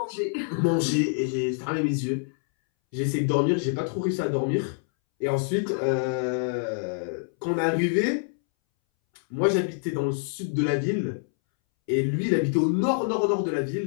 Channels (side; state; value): right; silent; 61 dB below the other